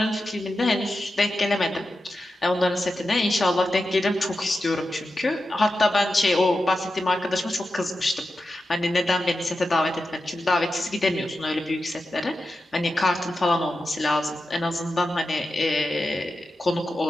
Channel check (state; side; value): normal; both; correlation 0.91